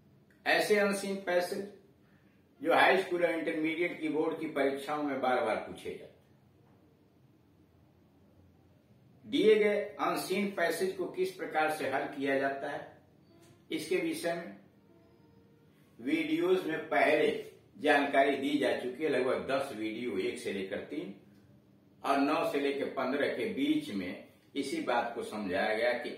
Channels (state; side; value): identical; both; correlation 1.00